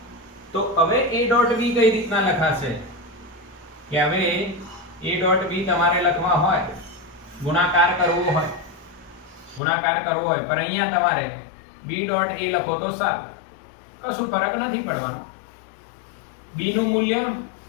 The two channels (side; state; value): right; drops out; at 9.6 s